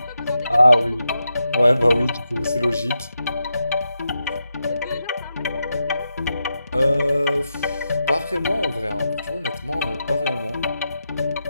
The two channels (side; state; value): both; inverted; correlation -0.86